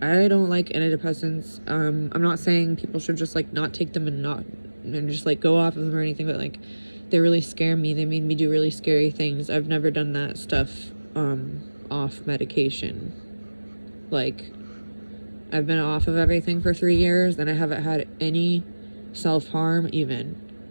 I don't like antidepressants. I'm not saying people should just like not take them and just like go off of them or anything, but like they really scare me. They made me do really scary things. I've never done that stuff off medication. Like, I've been off of everything for 3 years and I haven't had any self-harm even,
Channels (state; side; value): inverted; both; correlation -1.00